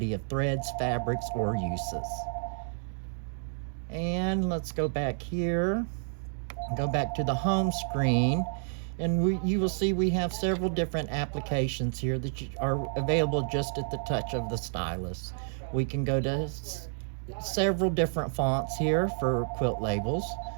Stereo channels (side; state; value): left; silent; digital silence